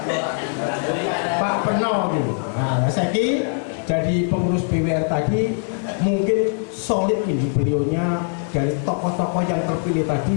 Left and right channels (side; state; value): right; silent; 58 dB below the other